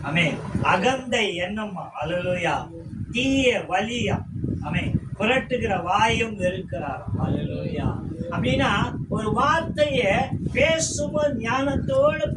ஆமென். அகந்தை எண்ணமா. அல்லேலூயா. தீய வலியா. ஆமென். புரட்டுகிற வாயும் இருக்கிறார். அல்லேலூயா. அப்படின்னா ஒரு வார்த்தைய பேசும்போது ஞானத்தோடு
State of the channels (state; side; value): identical; both; correlation 1.00